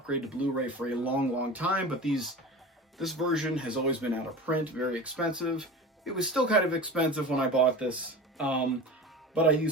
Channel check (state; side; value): normal; both; correlation 0.33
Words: to Blu-ray for a long, long time, but this version has always been out of print, very expensive. It was still kind of expensive when I bought this, but I